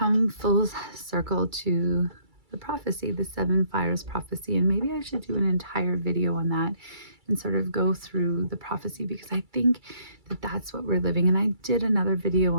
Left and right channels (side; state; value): left; late; 2.3 ms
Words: full circle to the prophecy, the seven fires prophecy. And maybe I should do an entire video on that and sort of go through the prophecy, because I think that that's what we're living. And I did another video